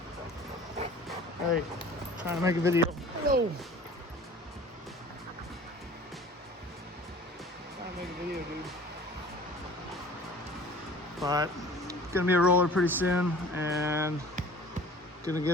Hey, trying to make a video. No. Trying to make a video, dude. But gonna be a roller pretty soon, and gonna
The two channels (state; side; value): normal; both; correlation 0.46